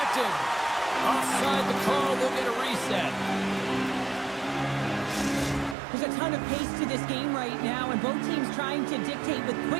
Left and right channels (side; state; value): left; drops out; at 5.8 s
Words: Offside the call, will get a reset. There's a ton of pace to this game right now, and both teams trying to dictate with